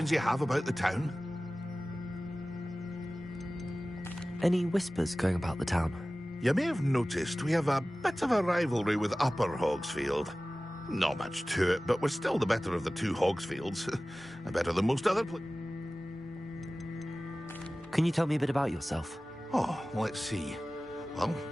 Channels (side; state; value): both; normal; correlation 0.97